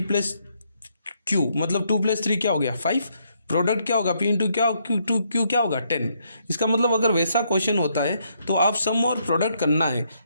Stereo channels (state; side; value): inverted; both; correlation -0.74